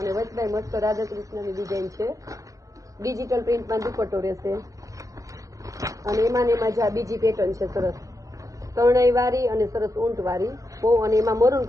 વચમાં મસ્ત રાધા કૃષ્ણની ડિઝાઇન છે. ડિજિટલ પ્રિન્ટમાં દુપટ્ટો રહેશે અને એમાં જ આ બીજી પેટર્ન છે સરસ તરણાઈ વાળી અને સરસ ઊંટ વાળી બહુ, અને એમાં મરૂન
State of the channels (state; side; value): late; left; 0.16 ms